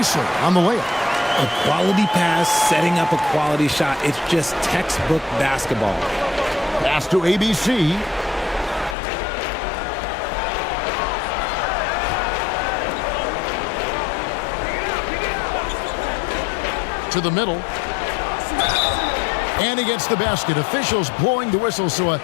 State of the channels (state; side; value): drops out; right; at 9.0 s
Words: on the layup. A quality pass, setting up a quality shot. It's just textbook basketball. Pass to ABC. To the middle. And he gets the basket. Officials blowing the whistle, so a